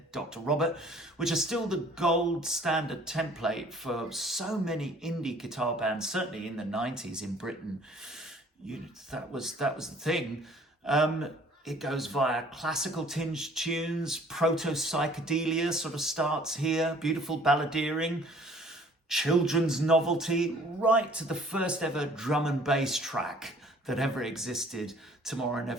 Dr. Robert, which are still the gold standard template for so many indie guitar bands, certainly in the 90s in Britain. That was the thing. It goes via classical tinged tunes, proto-psychedelia sort of starts here, beautiful balladeering, children's novelty, right to the first ever drum and bass track that ever existed, Tomorrow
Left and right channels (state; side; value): normal; both; correlation 0.54